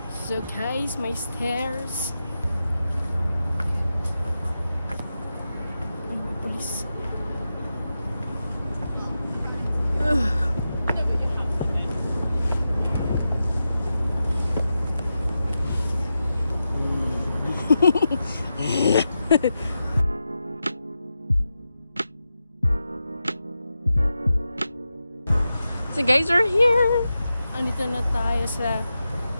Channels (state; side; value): inverted; both; correlation -0.90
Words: So guys, may stairs. Police. So guys, we're here! Andito na tayo sa